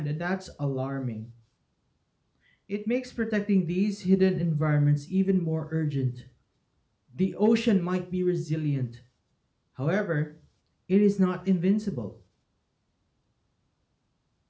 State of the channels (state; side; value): identical; both; correlation 1.00